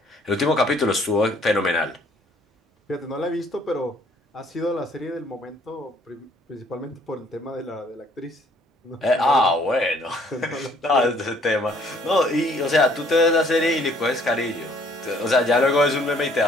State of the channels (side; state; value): both; normal; correlation 0.61